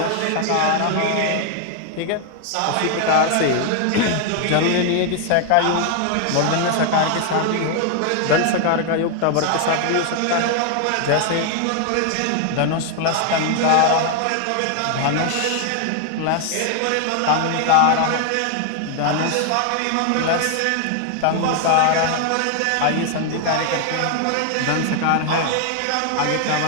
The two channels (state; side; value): different; both; correlation 0.00